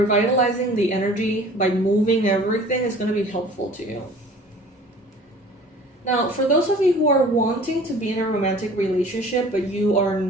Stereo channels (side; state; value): both; normal; correlation 0.47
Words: the energy by moving everything is going to be helpful to you. Now, for those of you who are wanting to be in a romantic relationship but you are